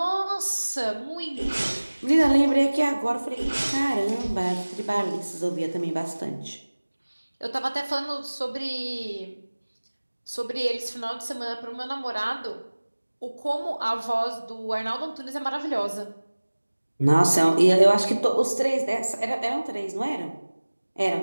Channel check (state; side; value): inverted; both; correlation -1.00